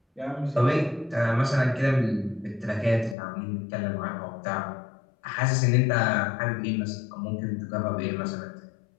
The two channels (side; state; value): right; drops out; at 3.2 s